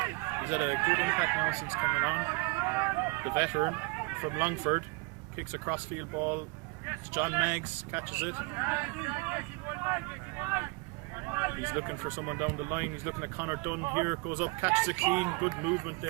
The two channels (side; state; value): left; quieter; 27.3 dB